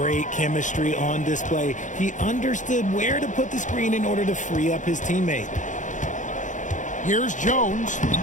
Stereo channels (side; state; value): right; late; 0.36 ms